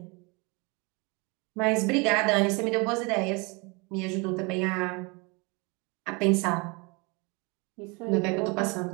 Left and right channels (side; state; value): left; quieter; 29.0 dB